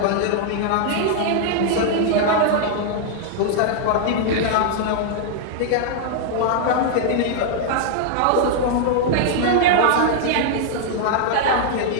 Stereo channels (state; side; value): different; both; correlation -0.01